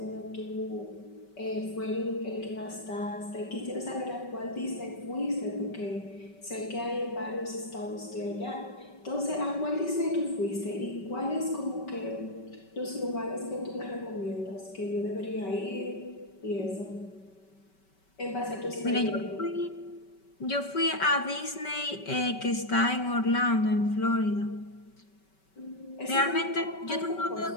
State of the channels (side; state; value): right; late; 5.2 ms